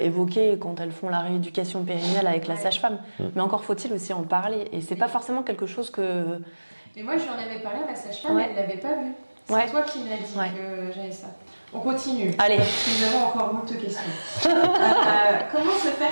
évoqué quand elles font la rééducation périnnéale avec la sage-femme. Mais encore faut-il aussi en parler. Et c'est pas forcément quelque chose que... Mais moi, j'en avais parlé à ma sage-femme, elle l'avait pas vu. C'est toi qui m'as dit que j'avais ça. On continue. Allez. Nous avons encore beaucoup de questions. Comment se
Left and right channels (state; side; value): inverted; both; correlation -1.00